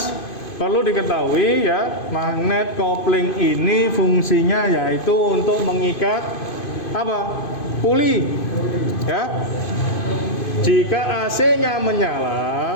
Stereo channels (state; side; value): late; right; 2.5 ms